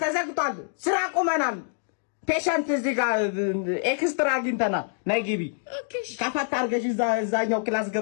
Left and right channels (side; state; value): right; silent; digital silence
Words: ተዘግቷል ስራ ቆመናል ፔሸንት እዚህ ጋር ኤክስትራ አግኝተናል ነይ ግቢ ከፈት አድርገሽ እዛኛው ክላስ